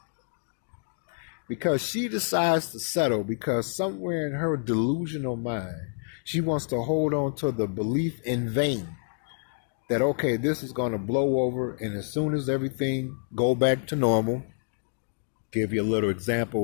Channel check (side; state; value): right; silent; digital silence